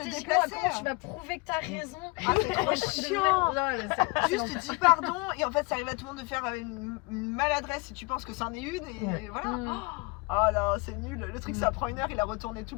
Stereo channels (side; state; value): right; quieter; 26.6 dB